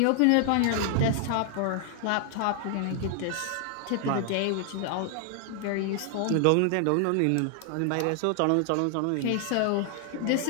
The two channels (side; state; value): both; different; correlation 0.00